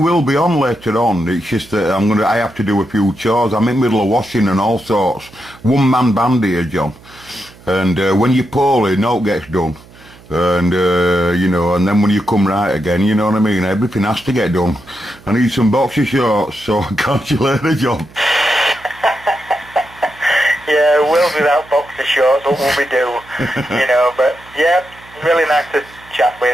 be on later on. It's just that I have to do a few chores. I'm in the middle of washing and all sorts. One-man band here, John. And when you're poorly, no gets done. And, you know, and then when you come right again, you know what I mean? Everything has to get done. I need some boxer shorts, so catch you later, John. Yeah, we'll be without boxer shorts, what will we do? You know, but, yeah, really nice to chat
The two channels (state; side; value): noise; right; hum, 24 dB below the sound